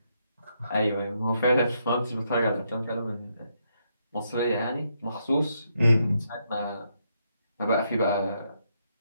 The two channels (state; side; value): inverted; both; correlation -0.78